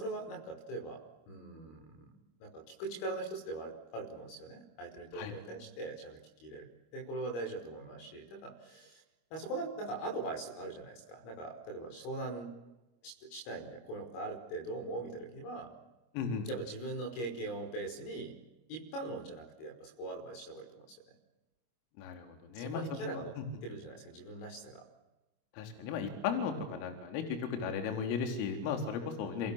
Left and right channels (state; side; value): late; right; 25 ms